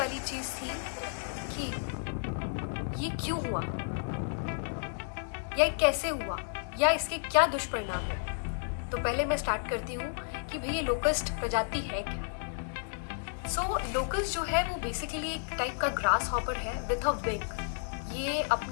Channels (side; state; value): right; silent; digital silence